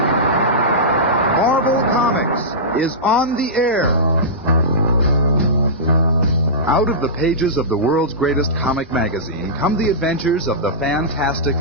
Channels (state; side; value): normal; both; correlation -0.17